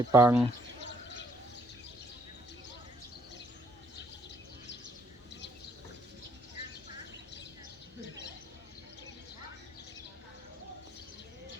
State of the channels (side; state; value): both; normal; correlation 0.67